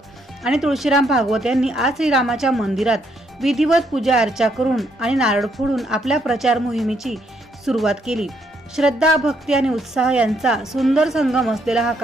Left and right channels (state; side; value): normal; both; correlation 0.73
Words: आणि तुळशीराम भागवत यांनी आज श्रीरामाच्या मंदिरात विधिवत पूजा अर्चा करून आणि नारळ फोडून आपल्या प्रचार मोहिमेची सुरुवात केली। श्रद्धा, भक्ती आणि उत्साह यांचा सुंदर संगम असलेला हा